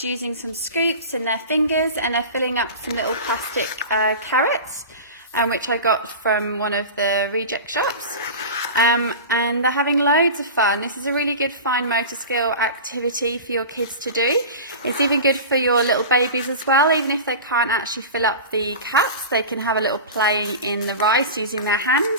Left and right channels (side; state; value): both; inverted; correlation -0.31